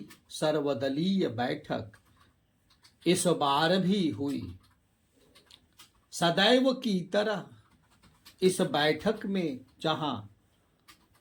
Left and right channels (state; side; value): identical; both; correlation 1.00